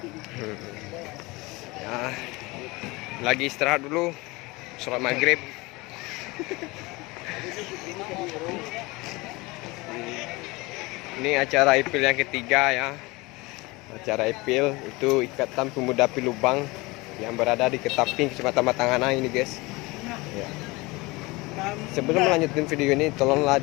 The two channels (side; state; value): right; quieter; 23.3 dB